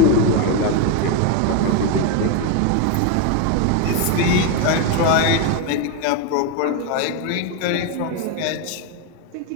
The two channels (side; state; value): both; different; correlation 0.02